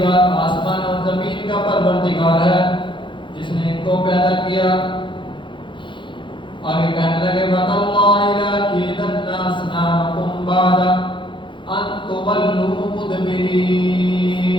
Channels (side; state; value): right; late; 0.23 ms